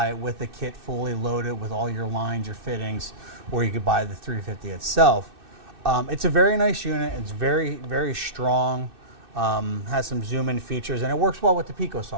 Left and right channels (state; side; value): late; left; 2.6 ms